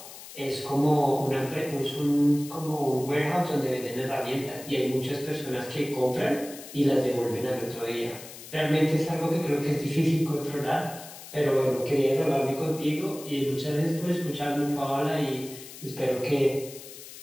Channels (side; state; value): left; noise; hiss, 15 dB below the sound